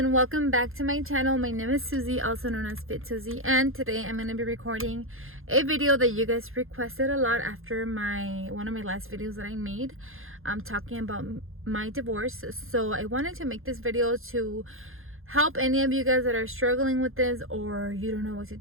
welcome back to my channel. My name is Susie, also known as FitSussie, and today I'm going to be recording a video that you guys requested a lot after one of my last videos that I made. I'm talking about my divorce. So I wanted to make this video to help any of you guys that are struggling with this, or you don't know what to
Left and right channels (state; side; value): late; left; 0.60 ms